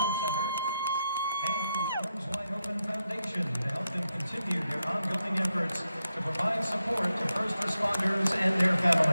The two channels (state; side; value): inverted; both; correlation -0.85